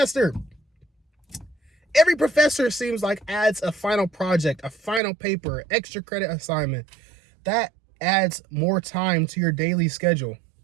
Every professor seems like adds a final project, a final paper, extra credit assignment. That adds more time to your daily schedule.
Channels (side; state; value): left; drops out; at 5.0 s